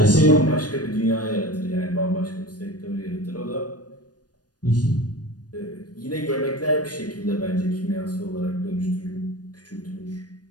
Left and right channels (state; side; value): late; right; 0.69 ms